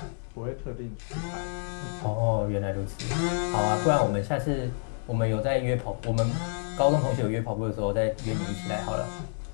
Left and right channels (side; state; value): right; silent; digital silence